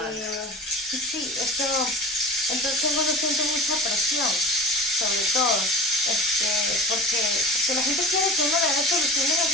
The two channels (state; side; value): normal; both; correlation 0.34